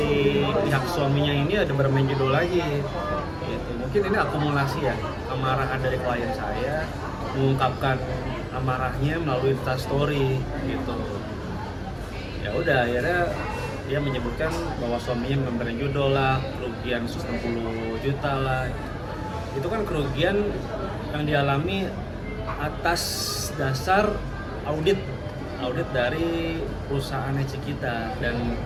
pihak suaminya ini ada bermain judul lagi. Gitu. Mungkin ini akumulasi ya, amarah dari klien saya mengungkapkan amarahnya melalui Instastory gitu. Ya udah akhirnya dia menyebutkan bahwa suaminya memberi judul lah, kerugian 160 juta lah. Itu kan kerugian yang dialami atas dasar audit dari perusahaan Cikita dan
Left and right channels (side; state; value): both; identical; correlation 1.00